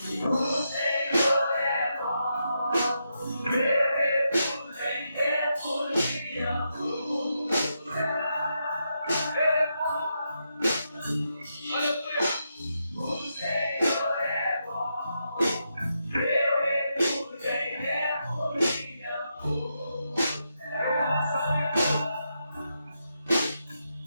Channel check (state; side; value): inverted; both; correlation -0.84